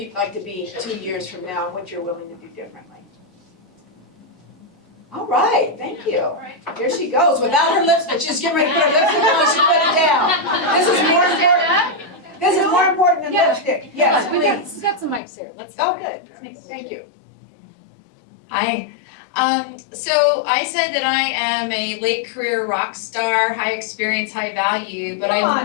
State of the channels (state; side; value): drops out; right; at 15.2 s